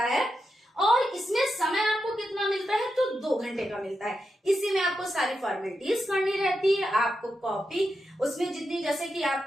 है, और इसमें समय आपको कितना मिलता है, तो 2 घंटे का मिलता है। इसी में आपको सारी फॉर्मेलिटीज करनी रहती है, आपको कॉपी उसमें जितनी, जैसे कि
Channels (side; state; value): both; normal; correlation 0.87